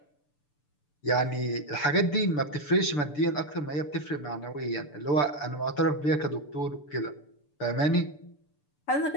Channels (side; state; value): right; late; 6.8 ms